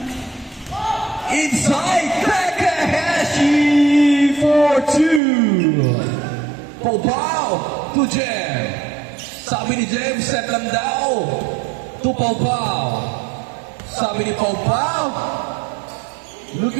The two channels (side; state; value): left; drops out; at 5.2 s